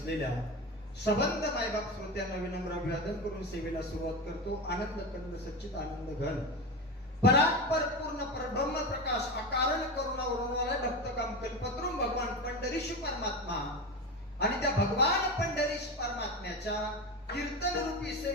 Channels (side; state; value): both; normal; correlation 0.22